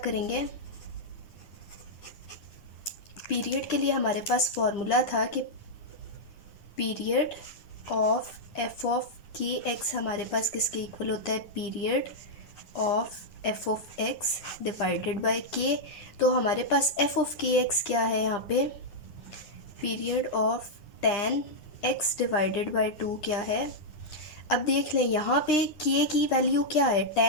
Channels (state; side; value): late; right; 9.9 ms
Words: पीरियड के लिए हमारे पास फॉर्मूला था कि period of F of k x हमारे पास किसके इक्वल होता है, period of F of x divided by के। तो हमारे पास एफ ऑफ के एक्स क्या है यहाँ पे, period of tan x divided by 2 क्या है। अब देख लें यहाँ पे k की वैल्यू क्या है,